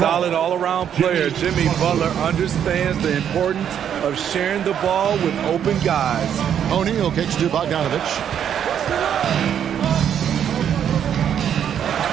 all-around player. Jimmy Butler understands the importance of sharing the ball with open guys. O'Neal kicks to Bogdanovich.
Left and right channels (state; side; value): quieter; left; 9.1 dB